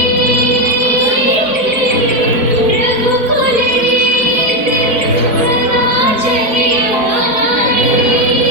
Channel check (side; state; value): left; late; 4.3 ms